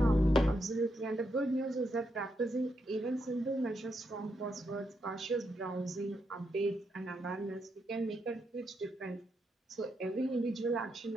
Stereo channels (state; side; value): normal; both; correlation 0.81